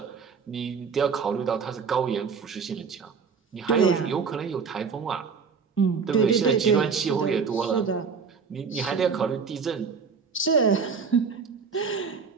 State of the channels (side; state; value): left; quieter; 5.6 dB